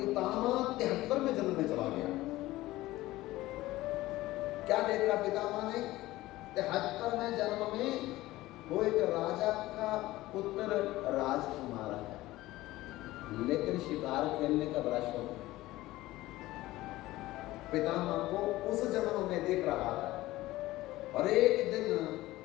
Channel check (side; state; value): right; quieter; 17.4 dB